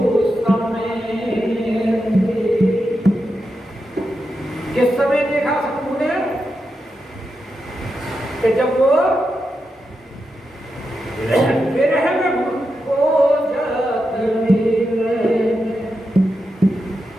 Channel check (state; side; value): normal; both; correlation 0.87